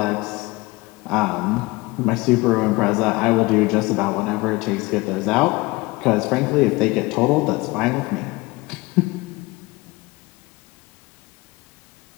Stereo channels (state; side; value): quieter; right; 22.6 dB